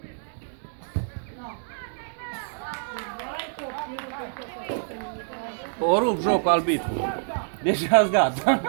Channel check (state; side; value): silent; left; digital silence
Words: O rup jocul arbitru. Deja-s gata.